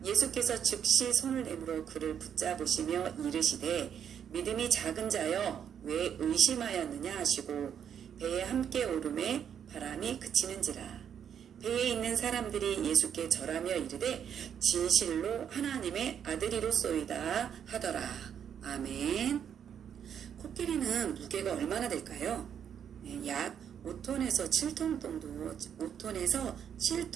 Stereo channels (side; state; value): left; quieter; 8.5 dB